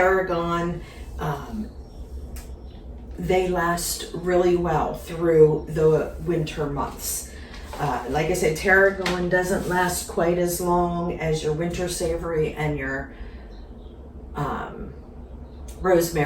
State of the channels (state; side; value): identical; both; correlation 1.00